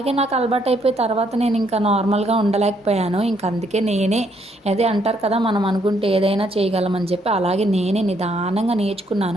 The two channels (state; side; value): normal; both; correlation 0.71